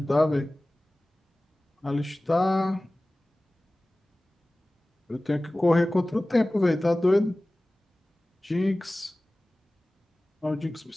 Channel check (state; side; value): normal; both; correlation 0.98